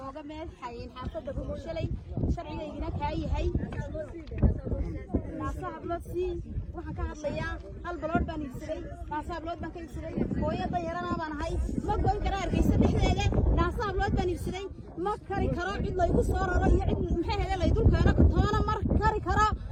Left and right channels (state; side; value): identical; both; correlation 1.00